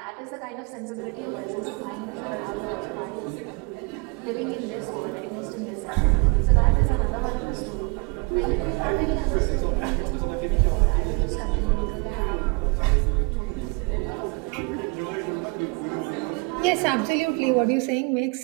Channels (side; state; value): left; quieter; 30.4 dB